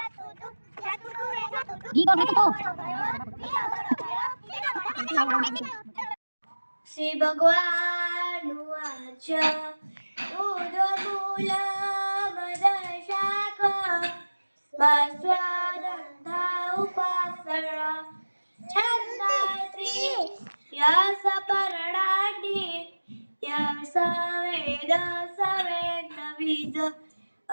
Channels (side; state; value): both; inverted; correlation -1.00